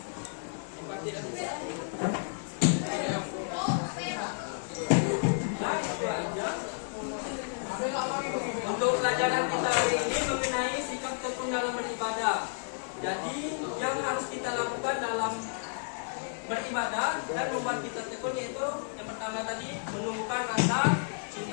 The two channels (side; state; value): right; silent; digital silence